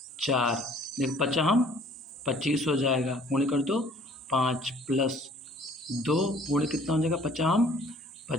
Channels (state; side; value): normal; both; correlation 0.55